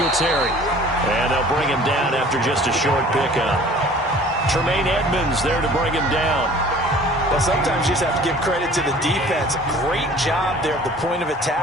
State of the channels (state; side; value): normal; both; correlation 0.49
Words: And they'll bring him down after just a short pickup. Tremaine Edmonds there to bring him down. Well, sometimes you just have to give credit to the defense. Great job there at the point of